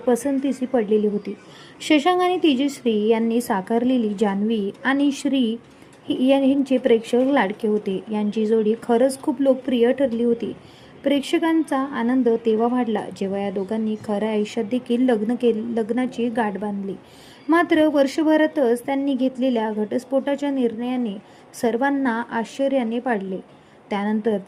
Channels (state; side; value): identical; both; correlation 1.00